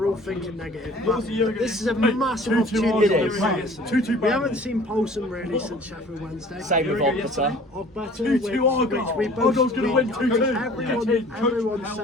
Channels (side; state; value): both; normal; correlation 0.49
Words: all thinking negative, but this is a massive opportunity. It is. We haven't seen Poulsen really since Sheffield Wednesday. Same with Ogbetter. Which we both going to win 2-2. Everyone